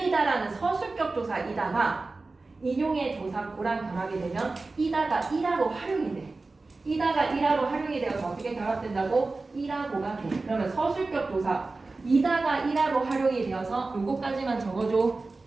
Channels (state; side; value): quieter; left; 3.6 dB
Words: 서술격 조사이다가 인용의 조사 고랑 결합이 되면 이다가 이라로 활용이 돼. 이다가 이라로 활용이 되어서 어떻게 결합된다고? 이라고가 돼. 그러면 서술격 조사 이다가 이라로 활용이 되어서 요거까지만 적어줘.